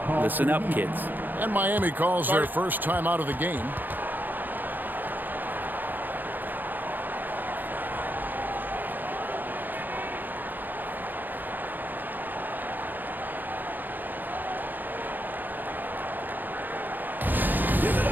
Listen up, kids. And Miami calls their first time out of the game.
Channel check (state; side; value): late; left; 0.087 ms